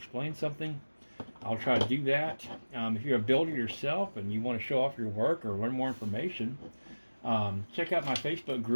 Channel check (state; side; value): inverted; both; correlation -1.00